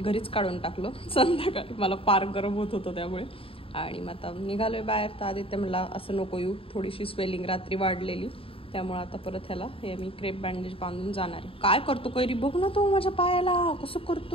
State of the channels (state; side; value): late; right; 0.27 ms